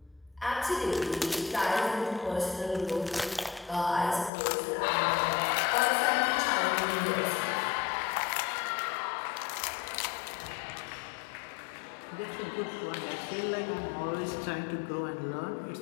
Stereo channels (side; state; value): right; drops out; at 4.3 s